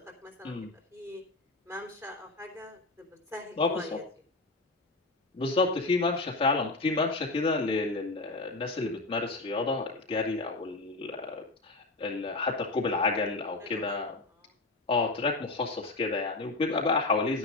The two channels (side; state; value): right; quieter; 3.2 dB